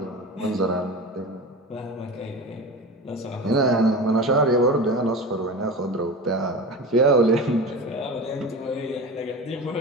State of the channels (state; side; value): normal; both; correlation 0.30